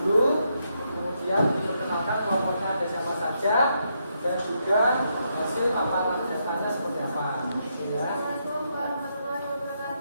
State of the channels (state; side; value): inverted; both; correlation -0.79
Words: kemudian diperkenalkan kelompoknya ada siapa saja dan juga hasil paparan datanya seperti apa. Ya.